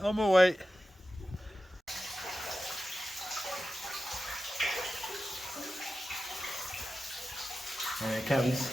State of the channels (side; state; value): both; normal; correlation 0.93